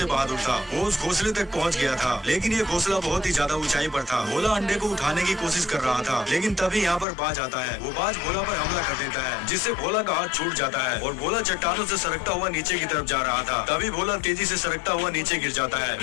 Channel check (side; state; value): right; drops out; at 7.1 s